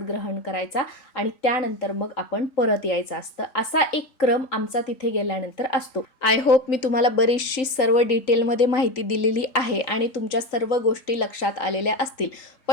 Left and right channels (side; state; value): right; late; 3.8 ms